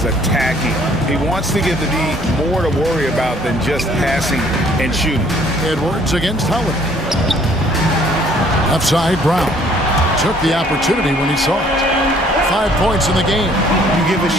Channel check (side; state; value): both; normal; correlation 0.60